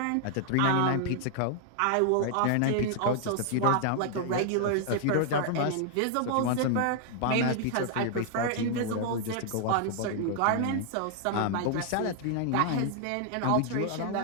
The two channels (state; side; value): different; both; correlation 0.00